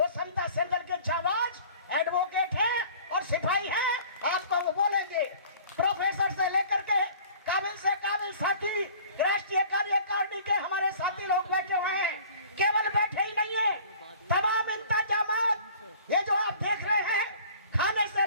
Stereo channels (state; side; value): inverted; both; correlation -0.48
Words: समता संदल के जाबाज एडवोकेट हैं और सिपाही हैं, आपको वो बोलेंगे। प्रोफेसर से लेकर के काबिल से काबिल साथी राष्ट्रीय कार्यकारिणी के हमारे साथी लोग बैठे हुए हैं। केवल बैठे ही नहीं है, तमाम इंतजामात ये जो आप देख रहे हैं, खाने से